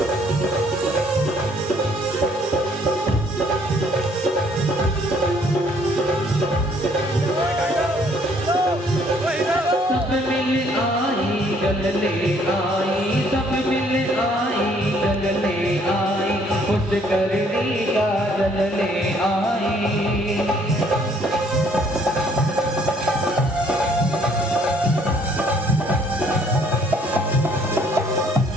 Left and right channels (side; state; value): both; normal; correlation 0.63